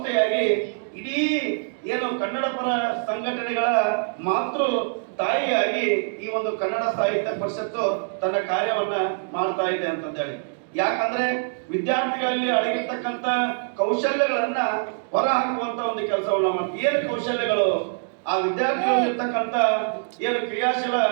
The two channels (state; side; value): silent; left; digital silence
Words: ಇಡೀ ಏನು ಕನ್ನಡ ಪರ ಸಂಘಟನೆಗಳ ಮಾತೃ ತಾಯಿಯಾಗಿ ಈ ಒಂದು ಕನ್ನಡ ಸಾಹಿತ್ಯ ಪರಿಷತ್ತು ತನ್ನ ಕಾರ್ಯವನ್ನ ಮಾಡ್ತಾ ಇದೆ ಅಂತಂದೇಳಿ. ಯಾಕಂದ್ರೆ ವಿದ್ಯಾರ್ಥಿಗಳಲ್ಲಿ ಅಡಗಿರ್ತಕ್ಕಂಥ ಕೌಶಲ್ಯಗಳನ್ನ ಹೊರ ಹಾಕುವಂತ ಒಂದು ಕೆಲಸವನ್ನ ಮಾಡ್ತೀವಿ. ಏನು ಕೌಶಲ್ಯಗಳು? ಆ ವಿದ್ಯಾರ್ಥಿಗಳಿರ್ತಕ್ಕಂಥ ಏನು ಕ್ರಿಯಾಶೀಲ